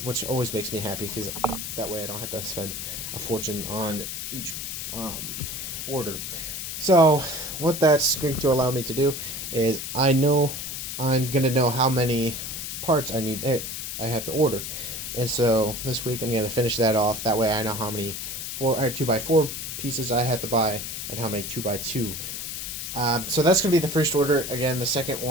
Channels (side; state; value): left; noise; hiss, 6 dB below the sound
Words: which always makes me happy because that way I don't have to spend a fortune on each order. So what that's going to allow me to do is I know I'm going to know how many parts I have to order. And so this week I'm going to finish that off. That way I know how many 2x4 pieces I have to buy and how many 2x2 So that's going to be the first order. Again, the second